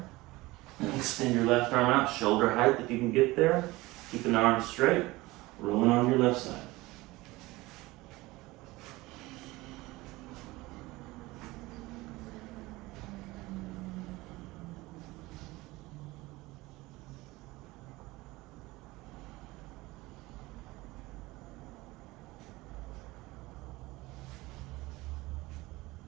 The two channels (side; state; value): left; quieter; 20.3 dB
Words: And extend your left arm out, shoulder height if you can get there. Keeping the arms straight. Rolling on your left side.